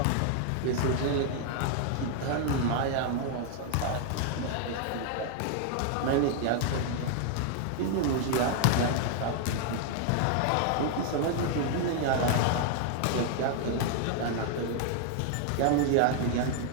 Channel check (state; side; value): different; both; correlation 0.00